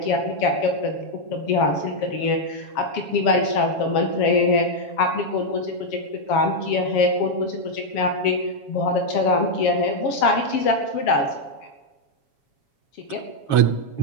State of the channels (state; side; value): late; right; 7.3 ms